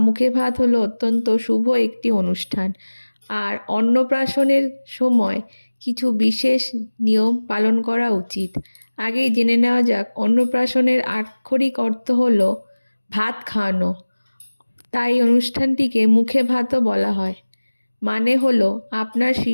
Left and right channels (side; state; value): both; inverted; correlation -1.00